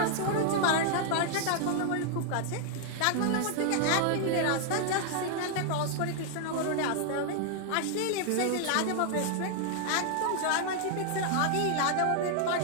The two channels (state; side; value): different; both; correlation 0.00